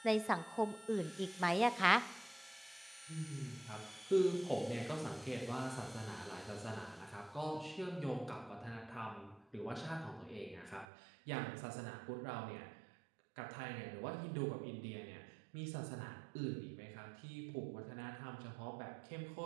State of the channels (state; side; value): drops out; left; at 10.9 s